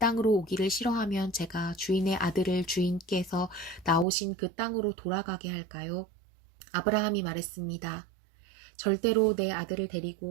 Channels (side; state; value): left; drops out; at 4.0 s